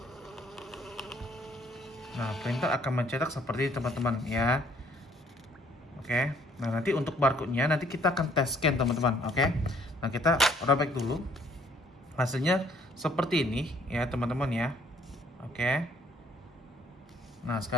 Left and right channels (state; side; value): normal; both; correlation 0.61